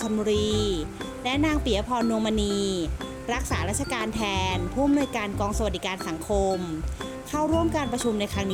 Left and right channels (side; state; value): both; identical; correlation 1.00